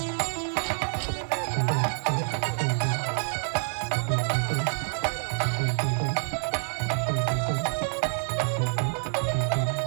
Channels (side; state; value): left; silent; 57 dB below the other